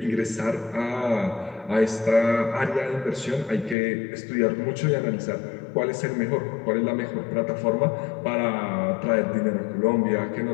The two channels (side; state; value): right; drops out; at 3.8 s